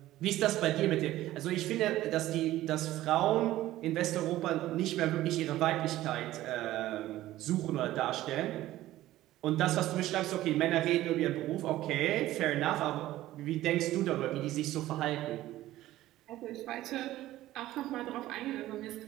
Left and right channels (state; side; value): quieter; left; 15.2 dB